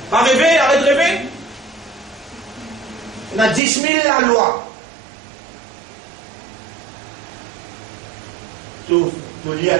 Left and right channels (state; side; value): drops out; left; at 3.6 s